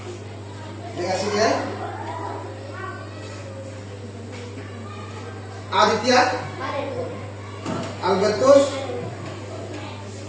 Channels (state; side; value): identical; both; correlation 1.00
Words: Terima kasih ya. Aditya, Albertus,